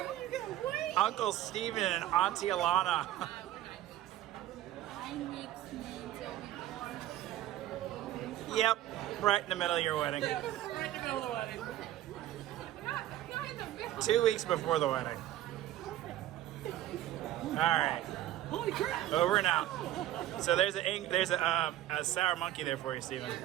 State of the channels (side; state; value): left; quieter; 13.6 dB